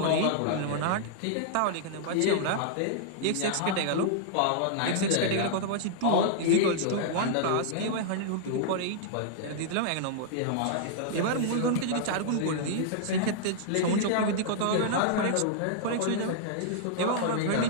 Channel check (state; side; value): different; both; correlation -0.01